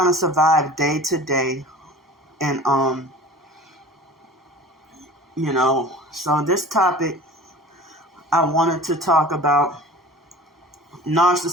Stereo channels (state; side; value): normal; both; correlation 0.41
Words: to survive day to day. And, so this topic, I wanted to talk about